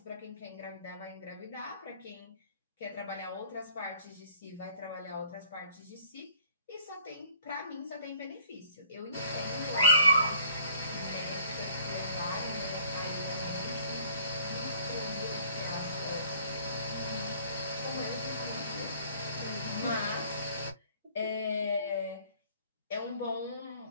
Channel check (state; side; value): inverted; both; correlation -0.56